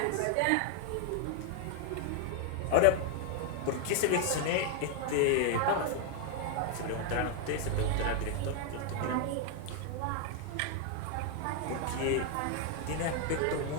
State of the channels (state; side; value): different; both; correlation 0.00